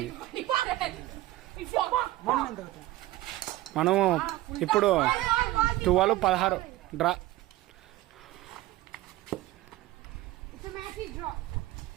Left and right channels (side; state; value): left; quieter; 17.0 dB